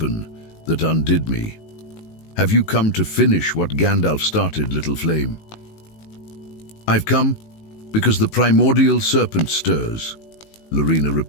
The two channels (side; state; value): right; late; 19 ms